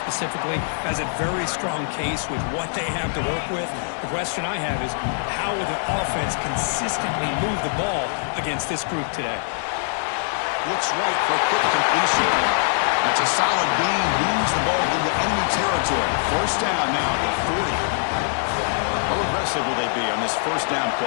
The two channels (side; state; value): right; silent; digital silence